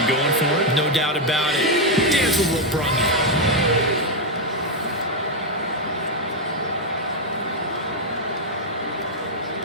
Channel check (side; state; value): both; normal; correlation 0.02